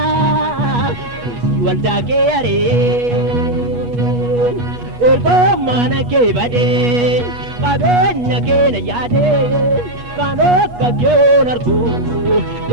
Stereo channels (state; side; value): late; left; 8.3 ms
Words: walda ke are ergo mana ke bade kabenya ke na yade kano ka ke nargo